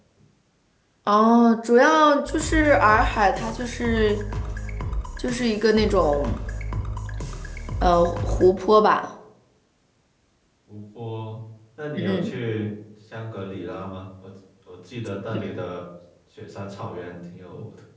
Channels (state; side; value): identical; both; correlation 1.00